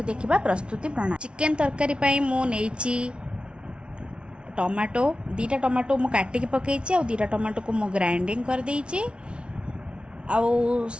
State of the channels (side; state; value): left; late; 0.058 ms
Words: देखा प्रस्तुति प्रणाली। चिकेन तरकारी पई मु नेइची टमाटो दीटा टमाटो मु काटिकी पकईची आ दीटा टमाटो को मु ग्राइंडिंग कर देइची आउ